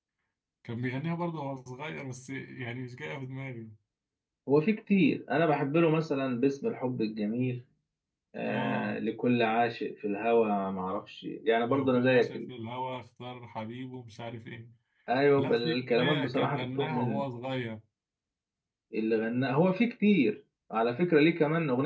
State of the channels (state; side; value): identical; both; correlation 1.00